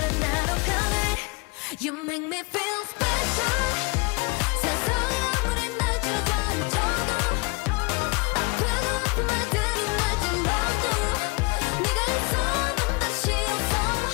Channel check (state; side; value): quieter; right; 28.4 dB